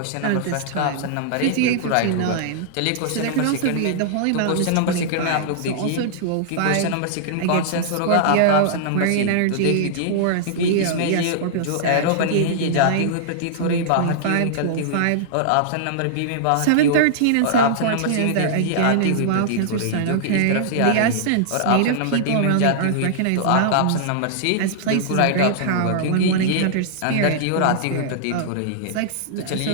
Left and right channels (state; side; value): different; both; correlation -0.01